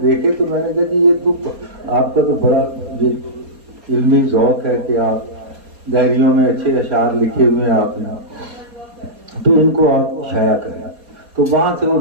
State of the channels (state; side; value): late; left; 4.2 ms